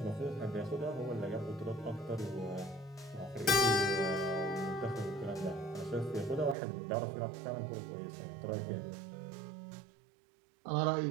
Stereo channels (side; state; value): left; drops out; at 6.6 s